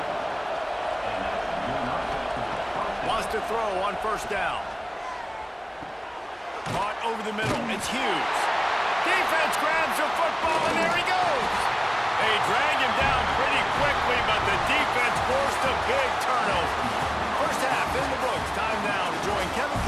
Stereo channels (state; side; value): identical; both; correlation 1.00